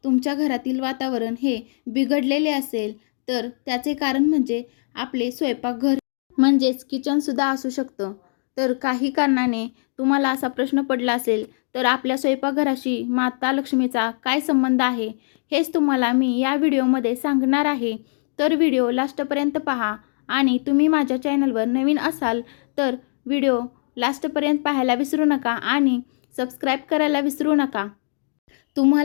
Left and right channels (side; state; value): right; silent; digital silence